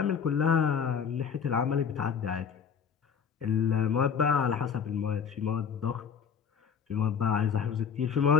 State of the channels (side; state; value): right; quieter; 6.9 dB